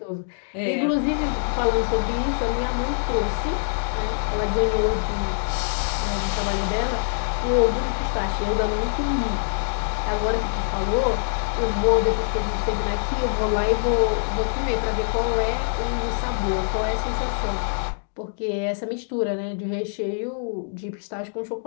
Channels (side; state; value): right; silent; digital silence